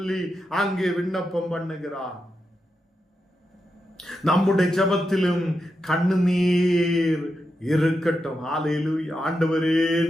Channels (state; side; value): normal; both; correlation 0.87